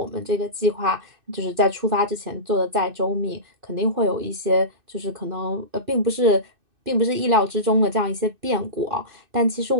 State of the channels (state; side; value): late; left; 2.6 ms